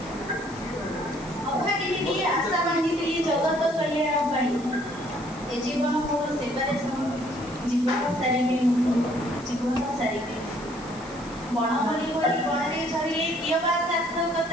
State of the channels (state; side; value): noise; right; hiss, 20 dB below the sound